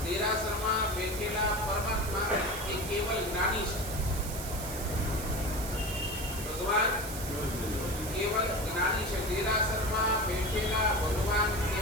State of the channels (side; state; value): right; noise; hiss, 9 dB below the sound